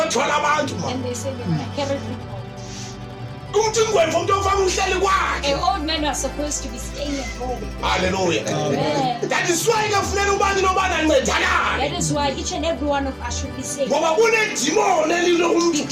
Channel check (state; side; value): identical; both; correlation 1.00